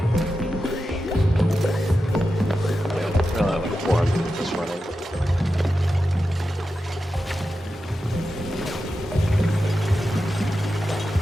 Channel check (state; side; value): normal; both; correlation 0.91